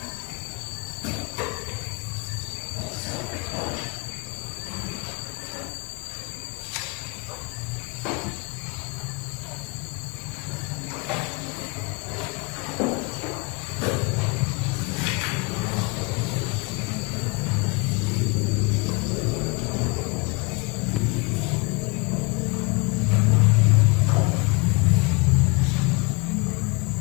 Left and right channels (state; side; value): quieter; right; 28.4 dB